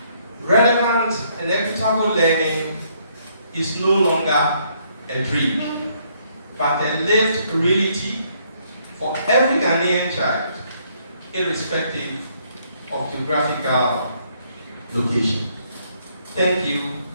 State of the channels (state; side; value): inverted; both; correlation -0.69